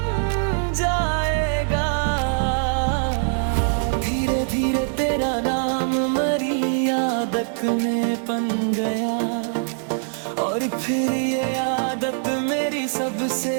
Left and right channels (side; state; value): left; silent; digital silence